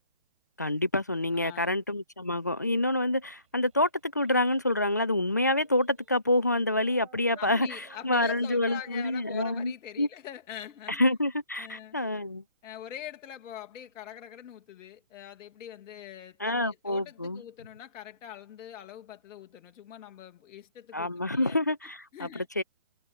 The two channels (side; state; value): both; inverted; correlation -0.61